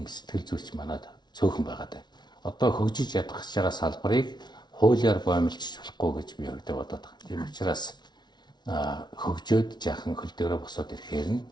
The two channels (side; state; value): right; late; 0.20 ms